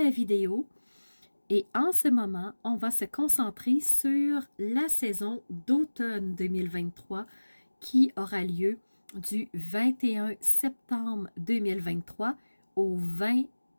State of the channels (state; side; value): inverted; both; correlation -1.00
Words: vidéo. Et en ce moment, on va se concentrer sur la saison d'automne 2023 qui aura lieu du 21 septembre 2023 au 20